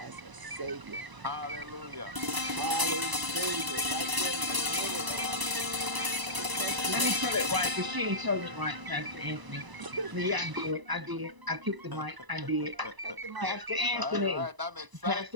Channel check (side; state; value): left; late; 1.0 ms